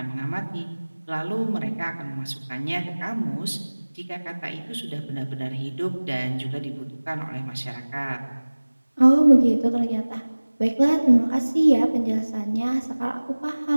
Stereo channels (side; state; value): both; inverted; correlation -1.00